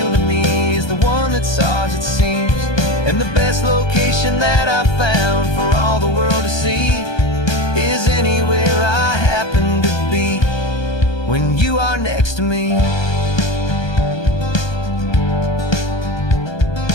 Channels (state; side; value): late; right; 1.2 ms